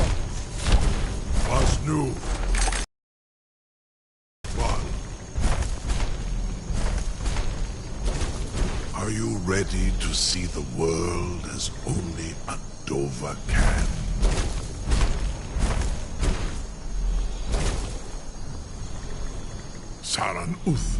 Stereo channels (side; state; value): both; identical; correlation 1.00